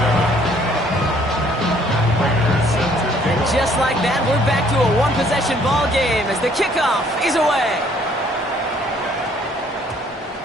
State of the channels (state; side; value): normal; both; correlation 0.62